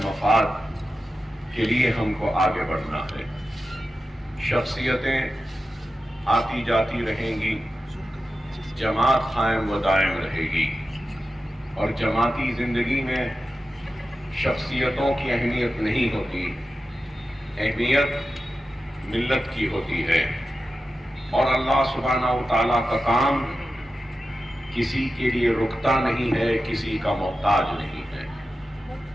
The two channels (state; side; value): normal; both; correlation 0.92